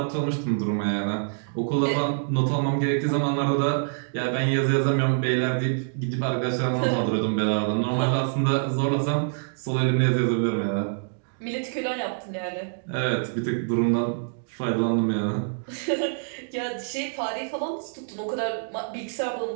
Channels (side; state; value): left; silent; digital silence